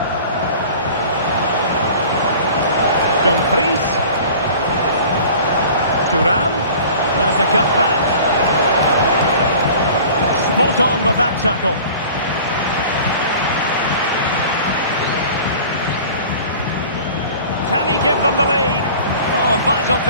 Dumfries. Thuram. There's a cut back. Spot on with that tackle. Can he give them the lead? Oh, a vital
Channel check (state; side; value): inverted; both; correlation -0.44